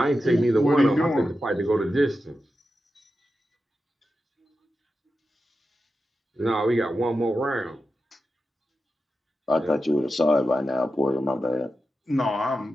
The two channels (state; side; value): normal; both; correlation 0.90